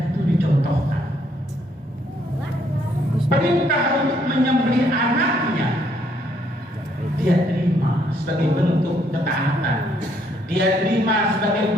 itu dicontohkan. Perintah untuk menyembelih anaknya dia terima sebagai bentuk ketaatan, dia terima sebagai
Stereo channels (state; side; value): normal; both; correlation 0.69